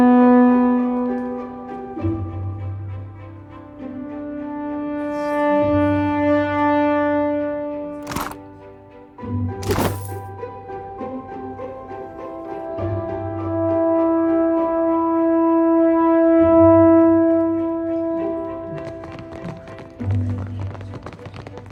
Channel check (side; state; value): both; identical; correlation 1.00